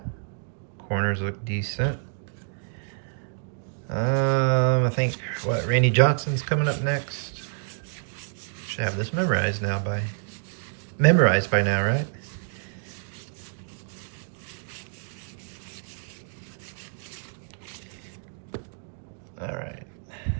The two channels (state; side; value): silent; left; digital silence